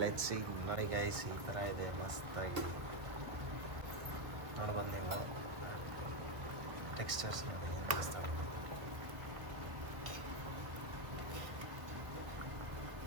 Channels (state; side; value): late; left; 1.3 ms